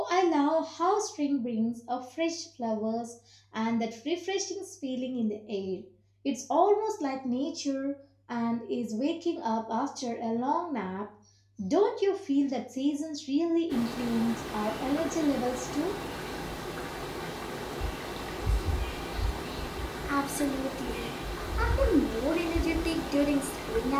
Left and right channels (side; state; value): both; identical; correlation 1.00